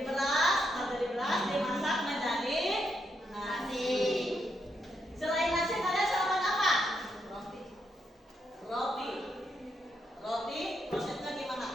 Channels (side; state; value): both; normal; correlation 0.80